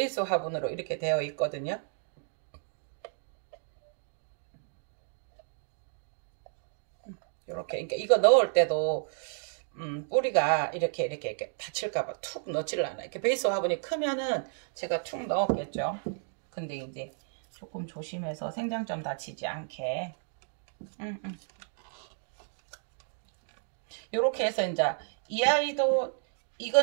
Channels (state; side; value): silent; left; digital silence